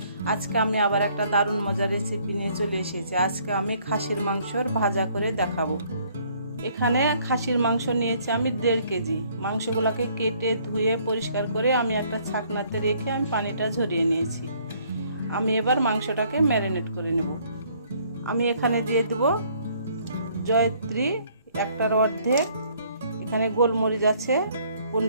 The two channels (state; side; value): inverted; both; correlation -0.63